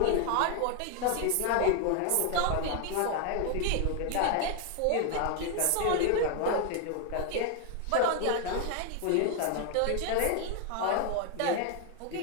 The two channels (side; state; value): both; different; correlation 0.01